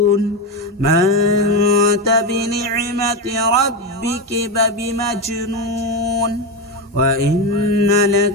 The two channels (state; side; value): normal; both; correlation 0.14